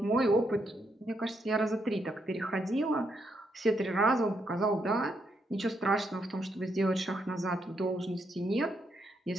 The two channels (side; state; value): both; normal; correlation 0.78